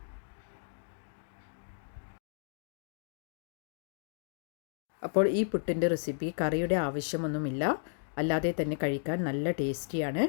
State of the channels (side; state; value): right; silent; digital silence